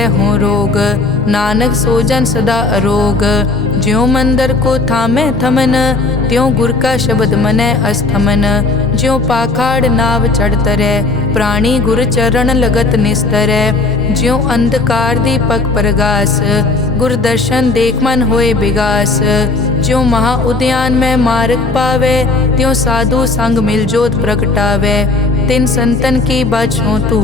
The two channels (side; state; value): right; quieter; 3.5 dB